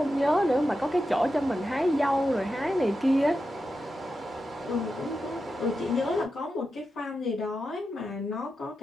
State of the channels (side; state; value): both; normal; correlation 0.89